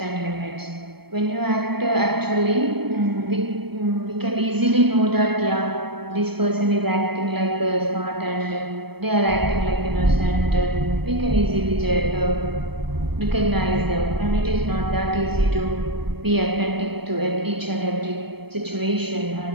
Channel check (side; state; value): left; late; 0.97 ms